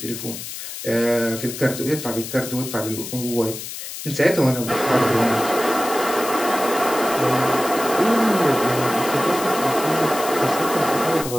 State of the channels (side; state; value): left; noise; hiss, 9 dB below the sound